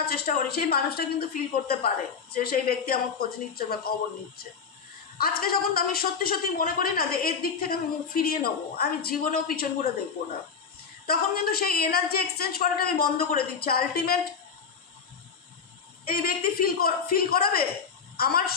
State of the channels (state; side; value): quieter; right; 6.0 dB